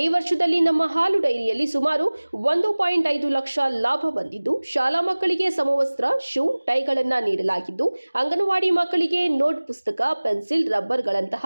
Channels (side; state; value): both; inverted; correlation -1.00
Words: ಈ ವರ್ಷದಲ್ಲಿ ನಮ್ಮ ಹಾಲು ಡೈರಿಯಲ್ಲಿ ಸುಮಾರು 1.5 ಲಕ್ಷ ಲಾಭ ಬಂದಿದ್ದು, ಶಾಲಾ ಮಕ್ಕಳಿಗೆ ಸಮವಸ್ತ್ರ, ಶೂ, ಟೈಗಳನ್ನು ನೀಡಲಾಗಿದ್ದು, ಅಂಗನವಾಡಿ ಮಕ್ಕಳಿಗೆ ನೋಟ್ ಪುಸ್ತಕ, ಪೆನ್ಸಿಲ್,